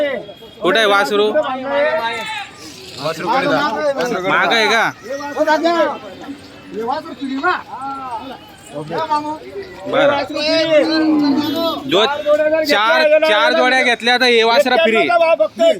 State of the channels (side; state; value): both; identical; correlation 1.00